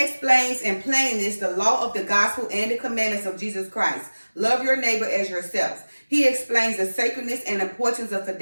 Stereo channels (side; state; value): both; inverted; correlation -1.00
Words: in plainness the law of the gospel and the commandments of Jesus Christ. Love your neighbor as yourself. He explains the sacredness and importance of